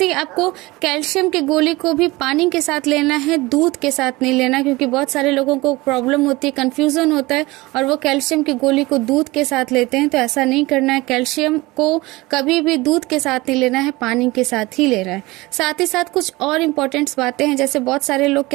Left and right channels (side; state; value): left; quieter; 21.5 dB